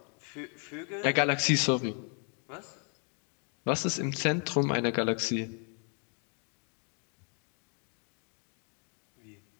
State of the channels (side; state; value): right; quieter; 39.2 dB